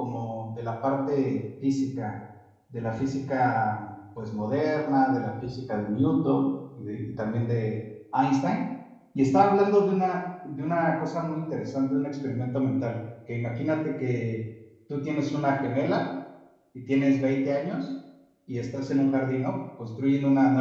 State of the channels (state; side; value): identical; both; correlation 1.00